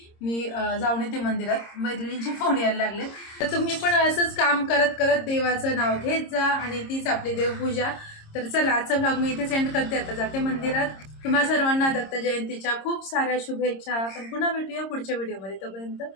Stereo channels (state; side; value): late; right; 26 ms